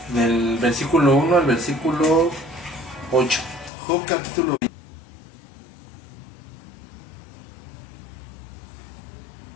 del versículo 1 al versículo 8. Job capítulo 22.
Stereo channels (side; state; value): right; drops out; at 3.7 s